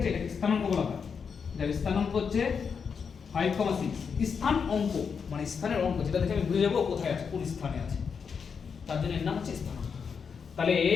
এটাকে স্থানাঙ্ক বলা হয়। যার স্থানাঙ্ক হচ্ছে 5,6, স্থান অঙ্ক মানে স্থানের অঙ্ক, যেটা দেখে আমি বুঝে যাবো কোথায় আছে, কোন স্থানে আছে, তার জন্য এর নাম হচ্ছে স্থানাঙ্ক। তাহলে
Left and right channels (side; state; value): right; quieter; 6.2 dB